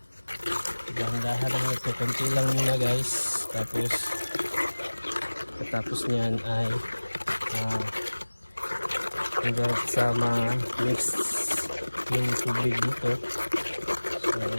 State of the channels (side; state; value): both; inverted; correlation -1.00